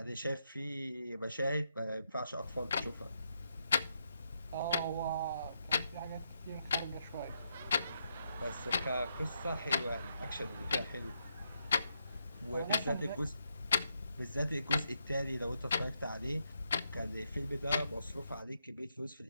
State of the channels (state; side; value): inverted; both; correlation -0.80